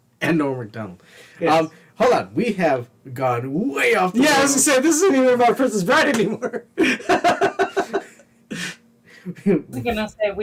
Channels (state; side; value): identical; both; correlation 1.00